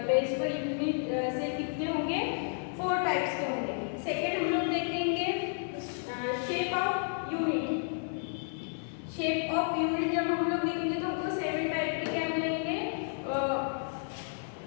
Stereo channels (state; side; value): silent; right; digital silence